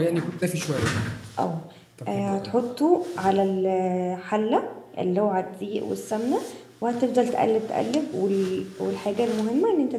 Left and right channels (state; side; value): identical; both; correlation 1.00